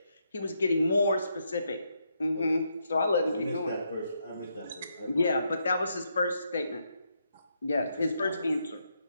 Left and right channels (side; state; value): both; inverted; correlation -0.79